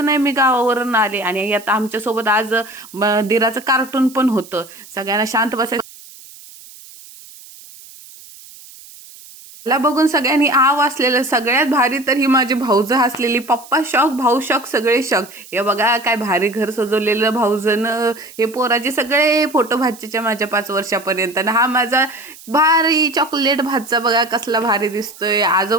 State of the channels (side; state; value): right; noise; hiss, 20 dB below the sound